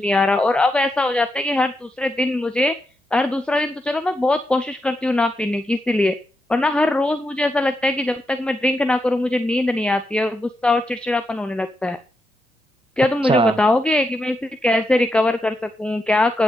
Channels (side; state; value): both; normal; correlation 0.84